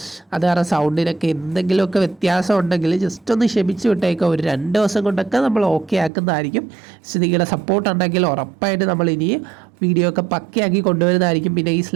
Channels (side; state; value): left; drops out; at 6.1 s